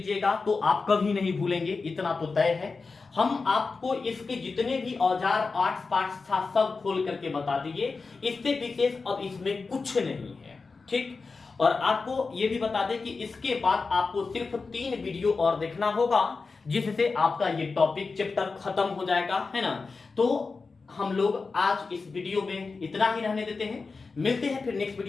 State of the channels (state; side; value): quieter; right; 4.3 dB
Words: तो आप कभी नहीं भूलेंगे, इतना तो तय है। हम आपको इसके जितने भी औजार आर्ट्स पार्ट्स था सब खोल करके बता दिए, इससे विशेष अब इसमें कुछ नहीं है, ठीक। और आपको ये भी बता दें कि इसके बाद आपको सिर्फ 3 वीडियो और देखना होगा, जिससे आपका ये टॉपिक चैप्टर खत्म हो जाएगा, है ना। तो हम लोग आज इस वीडियो में इतना ही रहने देते हैं, मिलते हैं फिर नेक्स्ट